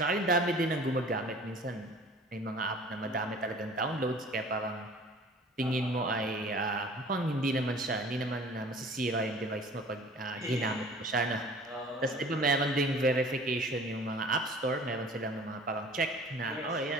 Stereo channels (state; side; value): normal; both; correlation 0.46